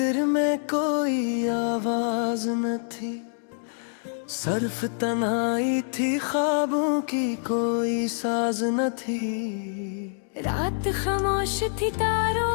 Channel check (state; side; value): silent; right; 61 dB below the other